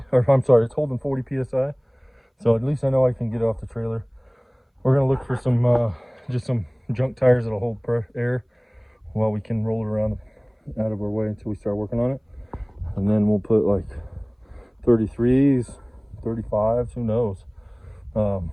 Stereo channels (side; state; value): both; identical; correlation 1.00